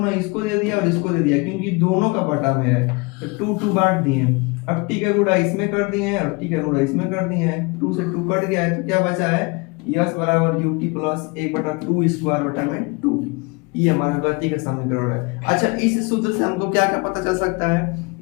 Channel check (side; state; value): right; quieter; 27.9 dB